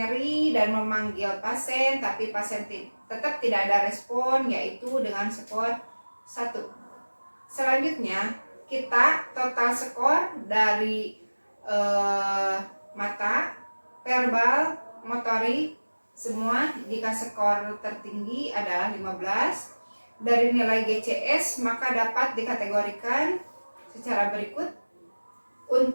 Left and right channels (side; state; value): both; inverted; correlation -1.00